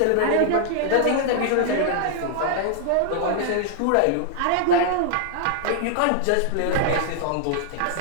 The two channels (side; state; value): both; different; correlation 0.00